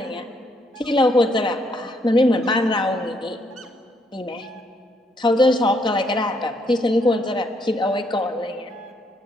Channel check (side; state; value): both; normal; correlation 0.72